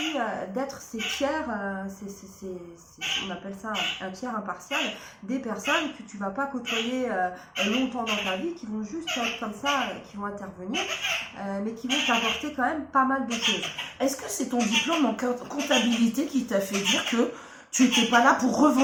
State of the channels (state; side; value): identical; both; correlation 1.00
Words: d'être ces tiers, on appelle ça un tiers impartial, des personnes que tu vas pas côtoyer longtemps dans ta vie, qui vont juste être comme ça, qui vont intervenir, mais qui vont t'apporter quand même pas mal de choses. Est-ce que c'est ton diplôme en comptabilité qui t'a fait dire que tu n'étais pas là pour